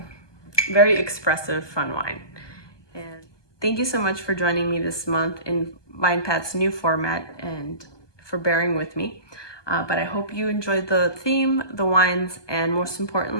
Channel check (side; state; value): right; late; 1.2 ms